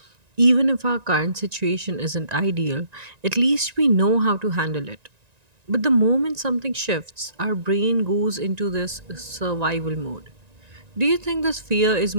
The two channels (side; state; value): left; late; 1.9 ms